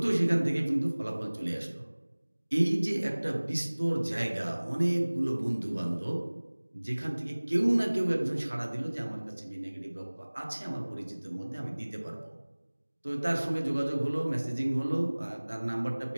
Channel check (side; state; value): both; inverted; correlation -1.00